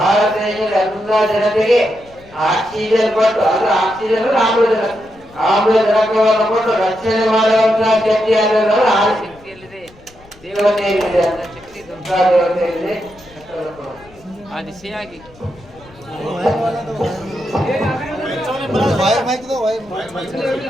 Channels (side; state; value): left; noise; rumble, 25 dB below the sound